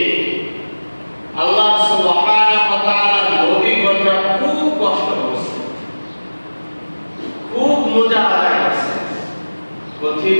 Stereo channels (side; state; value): both; inverted; correlation -1.00